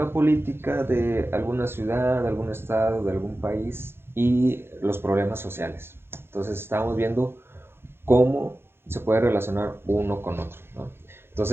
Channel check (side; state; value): left; late; 0.11 ms